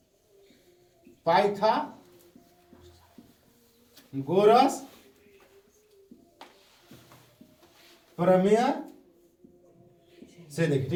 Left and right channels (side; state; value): both; identical; correlation 1.00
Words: पाइथागोरस प्रमेय से देखिए,